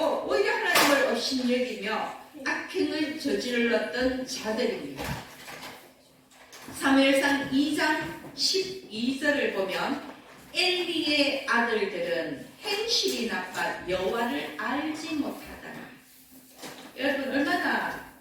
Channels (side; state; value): both; identical; correlation 1.00